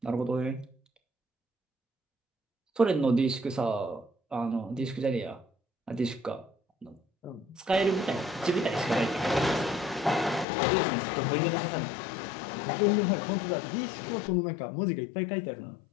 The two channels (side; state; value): right; drops out; at 10.5 s